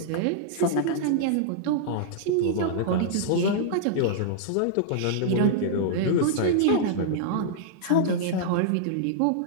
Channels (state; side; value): different; both; correlation -0.02